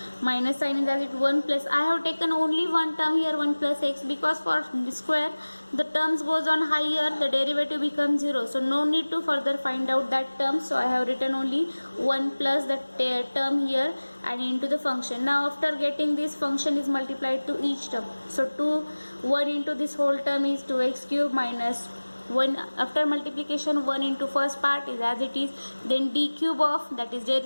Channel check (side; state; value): both; inverted; correlation -1.00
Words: minus sign is as it 1 plus, I have taken only one term here 1 plus x, because for the square the terms goes on higher, the derivative becomes 0, so no need to further find out that term, so I have written only 1 plus that term here and into the function. Now after getting this, function is multiplied to each term, so 1 into this whole term is 2x cube minus 1, after multiplication 1 into first part is as it is, then d cube of, that is their